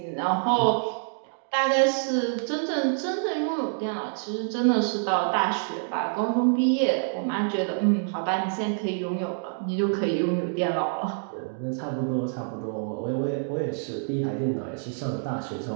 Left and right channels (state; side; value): silent; left; digital silence